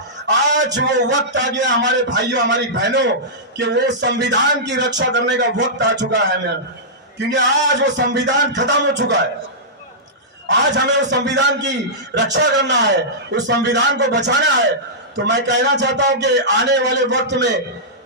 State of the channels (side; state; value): both; normal; correlation -0.15